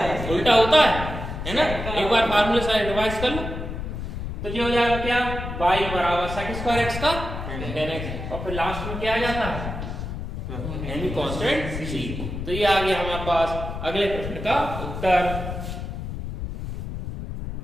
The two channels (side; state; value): left; noise; rumble, 6 dB below the sound